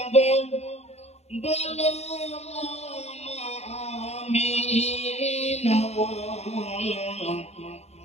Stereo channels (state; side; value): late; right; 0.31 ms